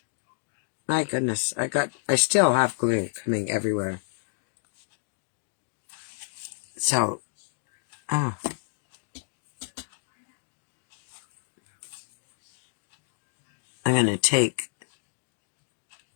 My goodness, I still have glue coming everywhere. So, I'm going to take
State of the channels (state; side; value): silent; right; digital silence